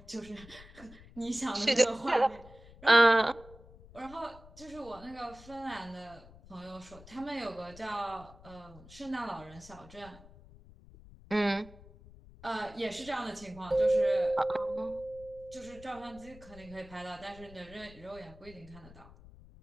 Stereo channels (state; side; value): noise; left; rumble, 20 dB below the sound